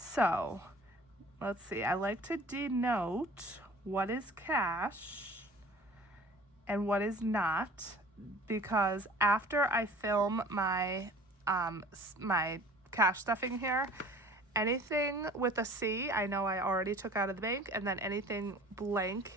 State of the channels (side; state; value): both; normal; correlation 0.47